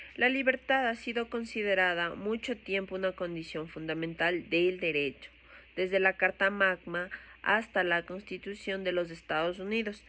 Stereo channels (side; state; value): both; identical; correlation 1.00